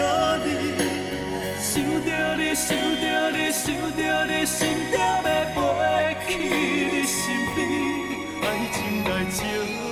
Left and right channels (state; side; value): identical; both; correlation 1.00